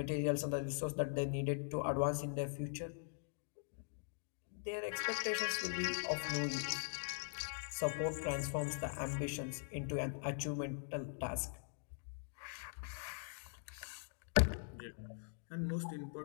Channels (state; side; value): silent; right; digital silence